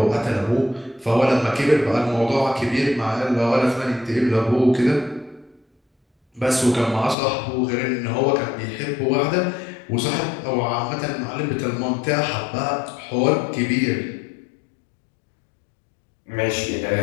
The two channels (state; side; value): drops out; right; at 7.2 s